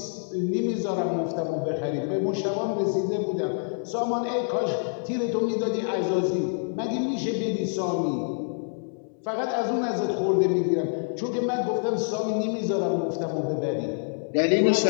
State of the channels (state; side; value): silent; right; digital silence